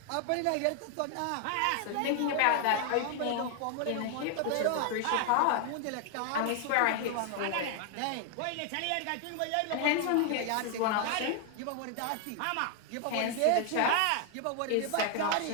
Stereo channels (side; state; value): both; different; correlation 0.00